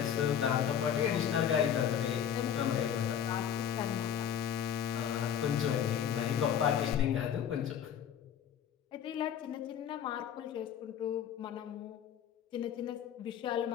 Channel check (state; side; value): quieter; right; 9.0 dB